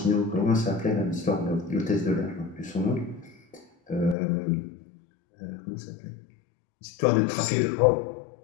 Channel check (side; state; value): right; drops out; at 4.2 s